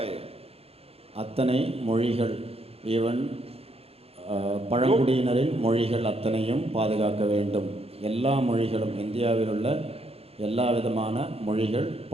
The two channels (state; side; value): late; left; 0.29 ms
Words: அத்தனை மொழிகள், ஈவன் பழங்குடியினரின் மொழிகள் அத்தனையும் பாதுகாக்க வேண்டும். எல்லா மொழிகளும், இந்தியாவில் உள்ள எல்லா விதமான மொழிகள்,